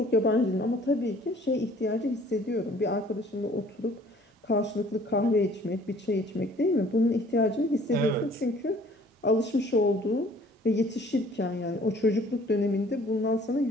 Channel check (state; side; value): normal; both; correlation 0.55